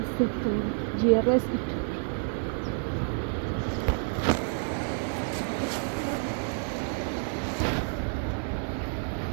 settur, GRS itu.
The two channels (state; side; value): silent; left; 59 dB below the other